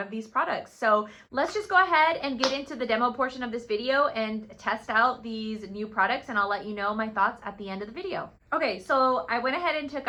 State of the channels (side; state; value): both; identical; correlation 1.00